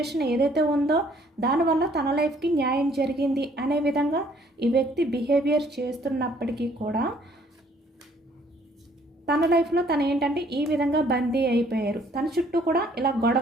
ఏదైతే ఉందో దానివల్ల తన లైఫ్కి న్యాయం జరిగింది అనే విధంగా ఈ వ్యక్తి బిహేవియర్ చేస్తున్నప్పటికీ కూడా తన లైఫ్లో తను ఏంటంటే ఈ విధంగా బందీ అయిపోయారు. తన చుట్టూ కూడా ఇలా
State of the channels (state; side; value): normal; both; correlation 0.62